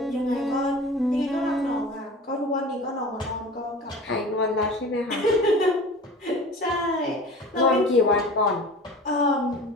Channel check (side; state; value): both; normal; correlation 0.38